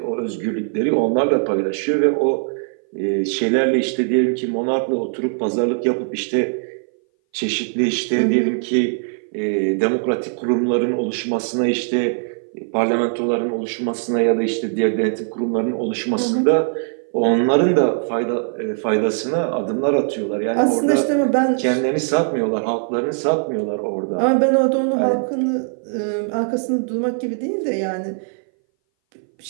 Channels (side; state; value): left; silent; 60 dB below the other